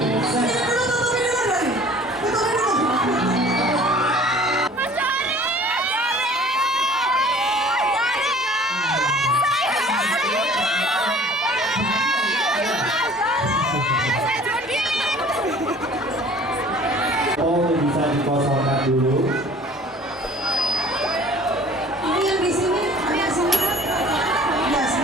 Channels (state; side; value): normal; both; correlation 0.49